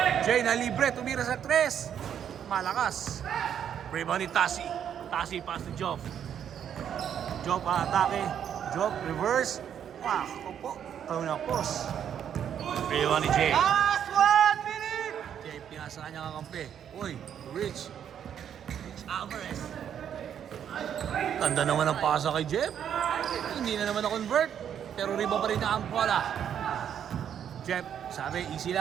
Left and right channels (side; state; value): left; quieter; 9.0 dB